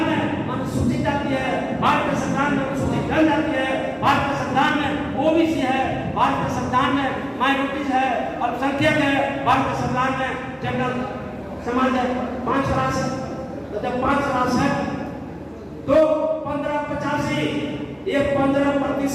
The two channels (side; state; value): both; identical; correlation 1.00